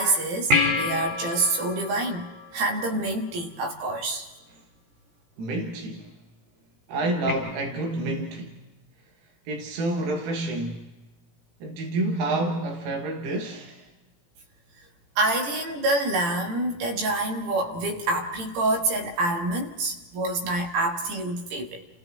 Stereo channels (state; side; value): late; left; 18 ms